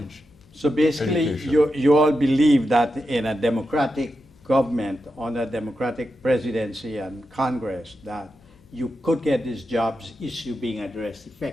So basically, you all believe that in a democratic government, on a democratic presidency and Congress, that you could get this jobs issue being addressed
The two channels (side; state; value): left; noise; hum, 29 dB below the sound